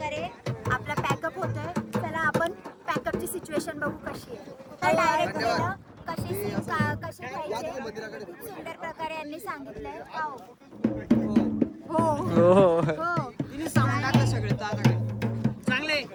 आपला पॅकअप होतोय. चला आपण पॅकअपची सिच्युएशन बघू कशी आहे. तर डायरेक्ट गेलं कशी कशी पाहिजे सुंदर प्रकारे यांनी सांगितलंय. हो हो तिने सामान टाकलं सगळे चांगले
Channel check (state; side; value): identical; both; correlation 1.00